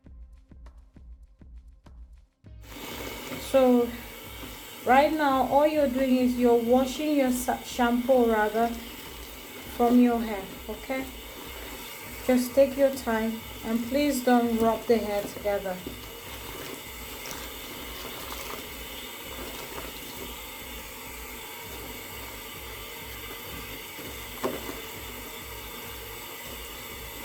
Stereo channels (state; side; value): identical; both; correlation 1.00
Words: So right now, all you're doing is you're washing your shampoo rather from your hair, okay? Just take your time and please don't rub the hair together.